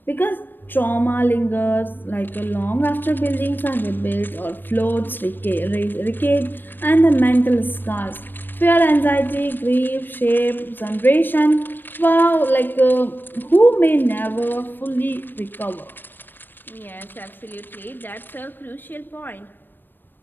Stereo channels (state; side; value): late; right; 0.094 ms